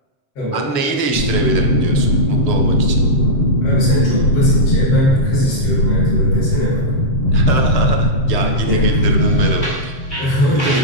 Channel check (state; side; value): late; right; 7.6 ms